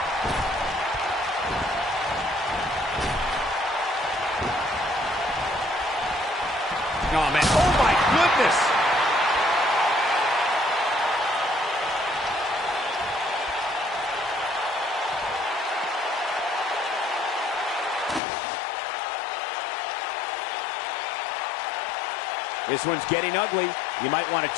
Oh, man. Oh, my goodness. This one's getting ugly. You might want to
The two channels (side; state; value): right; drops out; at 18.2 s